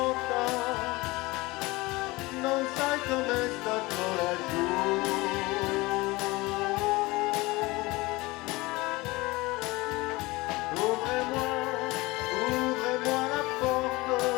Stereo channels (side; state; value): right; quieter; 22.0 dB